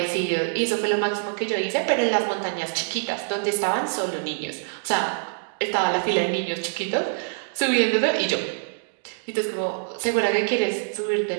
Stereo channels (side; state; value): left; silent; digital silence